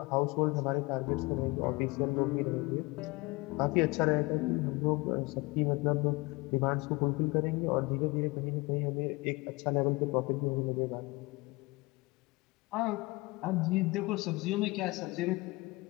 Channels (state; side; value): quieter; right; 23.8 dB